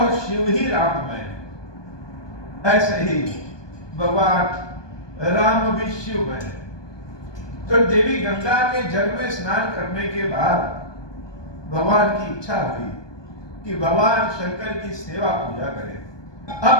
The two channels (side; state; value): right; late; 1.2 ms